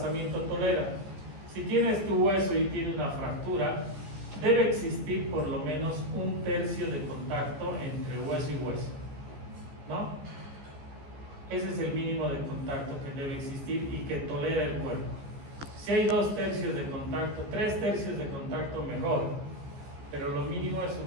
tolera? Si tienes tu hueso y tiene una fractura, debe existir por lo menos 1/3 de contacto entre hueso y hueso, ¿no? Ese es el mínimo de contacto que debe existir y que tolera el cuerpo. Si hay 2/3 de contacto, 3/3 de contacto, mejor, pero lo mínimo es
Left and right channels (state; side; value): late; left; 14 ms